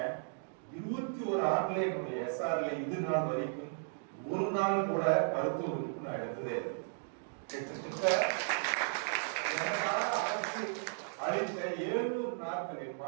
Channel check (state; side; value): silent; left; digital silence